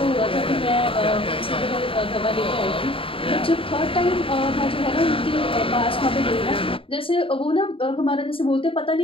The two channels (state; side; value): late; right; 0.26 ms